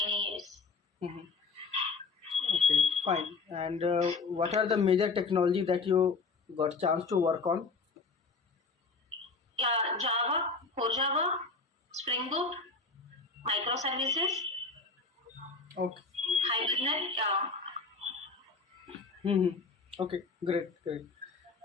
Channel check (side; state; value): right; quieter; 4.3 dB